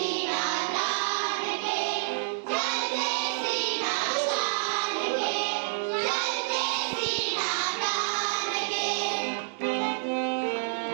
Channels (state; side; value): silent; left; digital silence